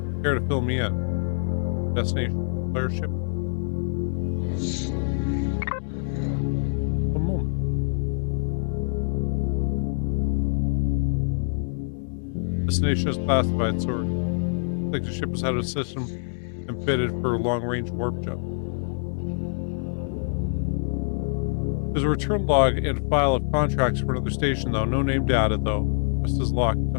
care to fill me in? Destination, player ship. A moment. Destination is classified, sorry. Looks like the ship has had a system and fitted for a long-range warp jump. There's a return log and file of contracts for another station, though. No name data, though. Just is locked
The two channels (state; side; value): silent; right; 61 dB below the other